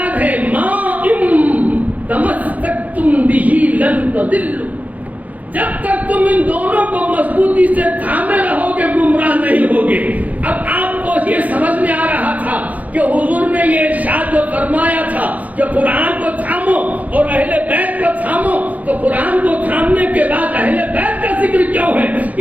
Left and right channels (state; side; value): late; left; 0.076 ms